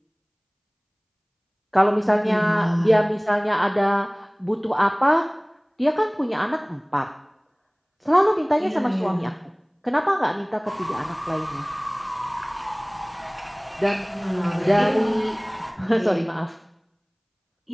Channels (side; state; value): both; identical; correlation 1.00